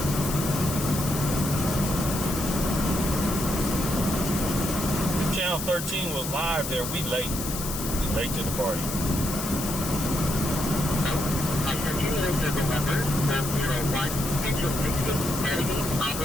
If Channel 13 was live there, we late. We late to the party.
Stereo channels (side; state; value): left; noise; hiss, 6 dB below the sound